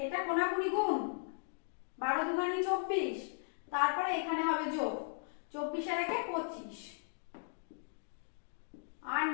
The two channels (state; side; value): silent; right; digital silence